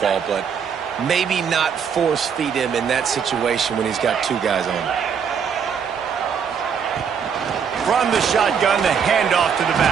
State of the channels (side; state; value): left; quieter; 7.0 dB